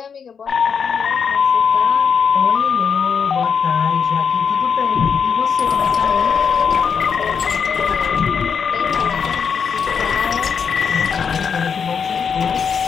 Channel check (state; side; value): quieter; right; 6.6 dB